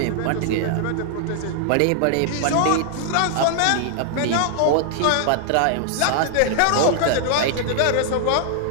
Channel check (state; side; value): different; both; correlation -0.01